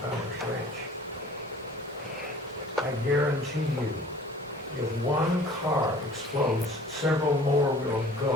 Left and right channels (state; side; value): normal; both; correlation 0.48